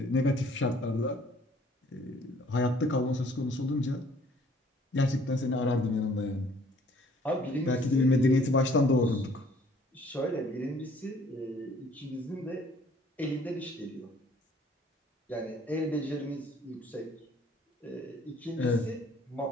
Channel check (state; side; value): normal; both; correlation 0.58